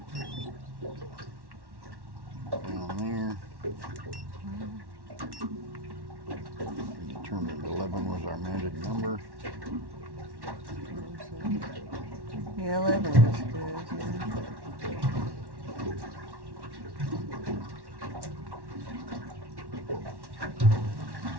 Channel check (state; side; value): late; left; 1.1 ms